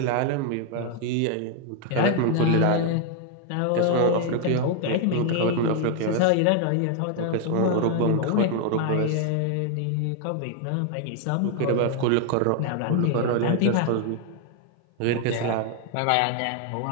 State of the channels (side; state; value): both; different; correlation 0.00